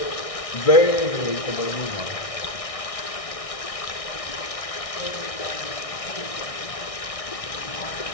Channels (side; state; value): right; late; 1.6 ms